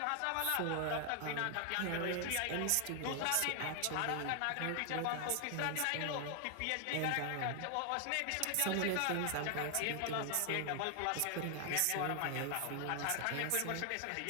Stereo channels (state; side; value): different; both; correlation 0.00